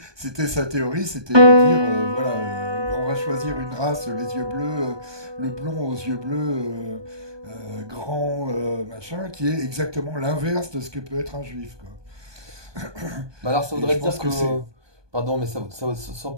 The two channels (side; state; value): left; late; 1.2 ms